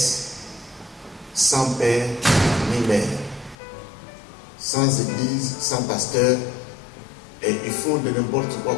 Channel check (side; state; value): right; drops out; at 3.6 s